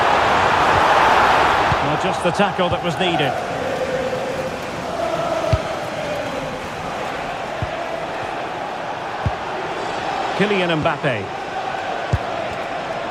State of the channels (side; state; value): both; identical; correlation 1.00